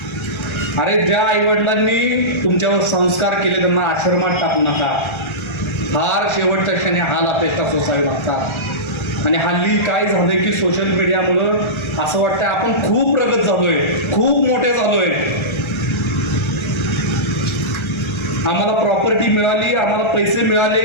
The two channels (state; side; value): late; right; 1.3 ms